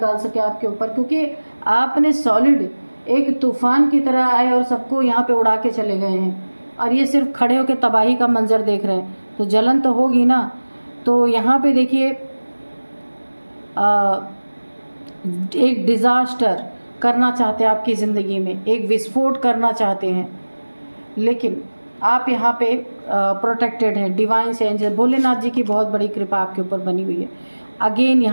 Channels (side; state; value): both; inverted; correlation -1.00